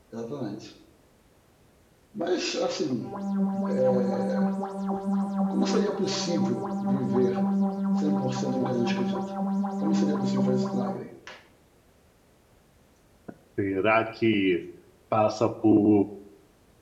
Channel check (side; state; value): both; identical; correlation 1.00